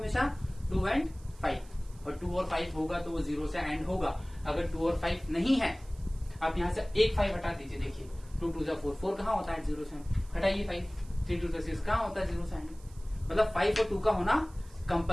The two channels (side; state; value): right; noise; hiss, 26 dB below the sound